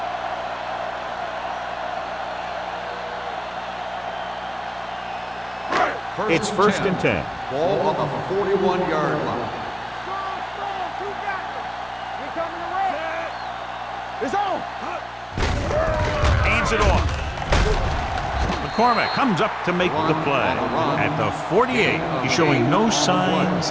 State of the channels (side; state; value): both; identical; correlation 1.00